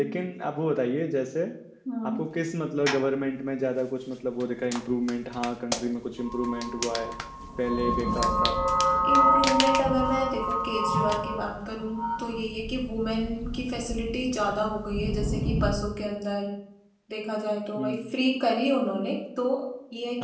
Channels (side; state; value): both; identical; correlation 1.00